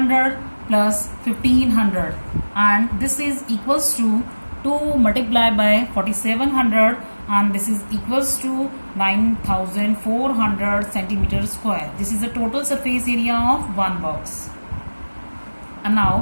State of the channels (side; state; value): both; inverted; correlation -1.00